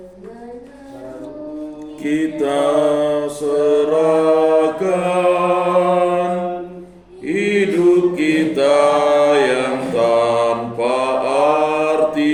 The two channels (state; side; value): identical; both; correlation 1.00